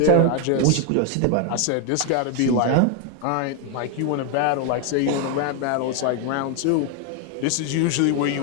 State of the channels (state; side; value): different; both; correlation 0.01